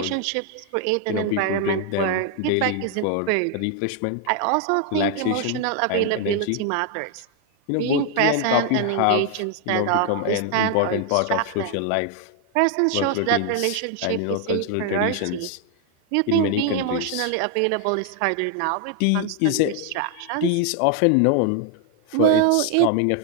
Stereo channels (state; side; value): different; both; correlation 0.00